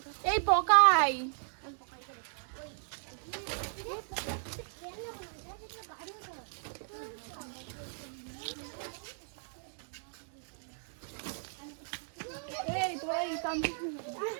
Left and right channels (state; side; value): silent; left; digital silence